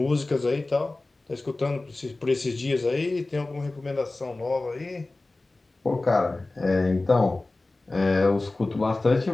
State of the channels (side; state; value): right; quieter; 3.1 dB